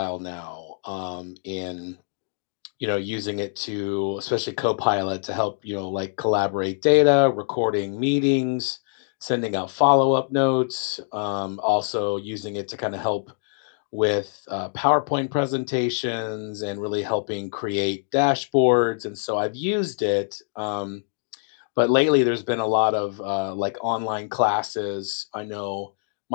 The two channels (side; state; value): right; silent; digital silence